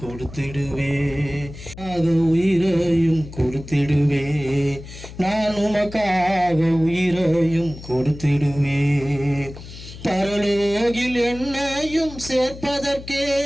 கொடுத்திடுவே, உயிரையும் கொடுத்திடுவே, நான் உமக்காக உயிரையும் கொடுத்திடுவே. பரலோகில் என்னையும் சேர்ப்பதற்கே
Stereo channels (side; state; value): left; noise; hum, 14 dB below the sound